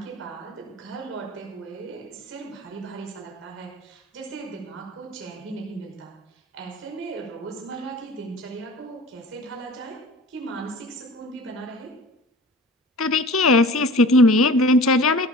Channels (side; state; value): both; normal; correlation 0.41